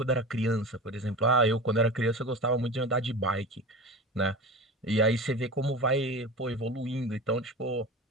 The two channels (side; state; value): both; normal; correlation 0.31